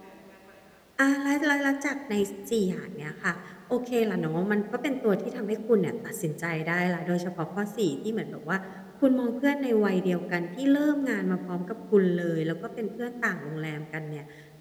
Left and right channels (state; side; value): identical; both; correlation 1.00